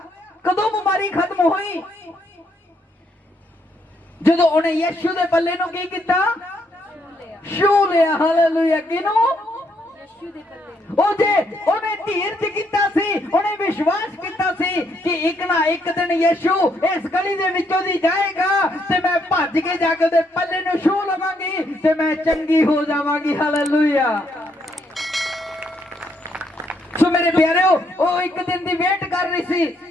ਕਦੋਂ ਬਿਮਾਰੀ ਖਤਮ ਹੋਈ? ਜਦੋਂ ਉਹਨੇ ਯਿਸੂ ਦੇ ਪੱਲੇ ਨੂੰ ਕੀ ਕੀਤਾ? ਛੂ ਲਿਆ। ਹਾਲੇਲੂਇਆ। ਕਿਨੂੰ? ਉਹ ਜੇ ਉਹਨੇ ਧੀਰਜ ਕੀਤਾ ਸੀ, ਉਹਨੇ ਵਿਸ਼ਵਾਸ ਕੀਤਾ ਸੀ ਕਿ ਇੱਕ ਨਾ ਇੱਕ ਦਿਨ ਯਿਸੂ ਇਸ ਗਲੀ ਦੇ ਵਿੱਚੋਂ ਦੀ ਜਾਏਗਾ ਤੇ ਮੈਂ ਭੱਜ ਕੇ ਜਾ ਕੇ ਉਹਦੇ ਪੱਲੇ ਨੂੰ ਛੂ ਲਵਾਂਗੀ ਤੇ ਮੈਂ ਚੰਗੀ ਹੋ ਜਾਵਾਂਗੀ। ਹਾਲੇਲੂਇਆ। ਸੋ ਮੇਰੇ ਪਿਆਰਿਓ, ਉਹ ਇੱਕ ਦਿਨ ਦੀ ਵੇਟ ਕਰ ਰਹੀ ਸੀ।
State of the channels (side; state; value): both; normal; correlation 0.74